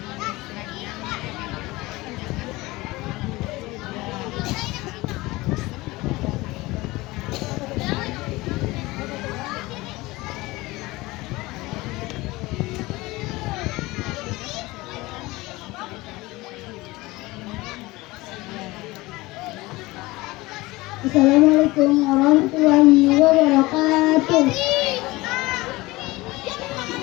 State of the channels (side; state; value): right; quieter; 20.8 dB